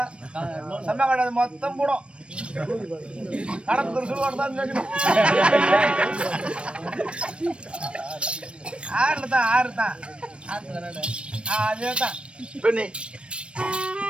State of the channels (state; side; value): late; left; 0.059 ms